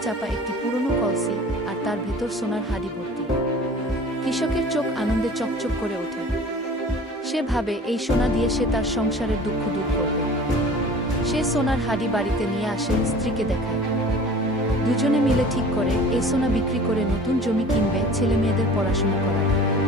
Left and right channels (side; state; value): both; normal; correlation 0.44